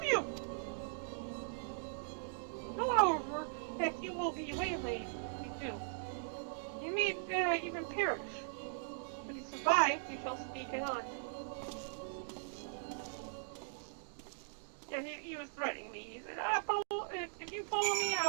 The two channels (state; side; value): silent; left; digital silence